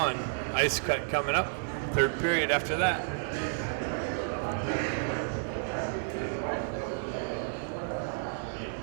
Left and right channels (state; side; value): silent; left; 57 dB below the other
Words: Ice cut coming up. Third period after that.